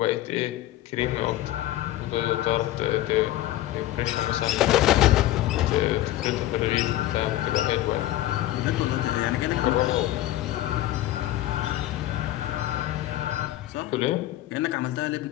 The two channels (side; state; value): right; quieter; 14.7 dB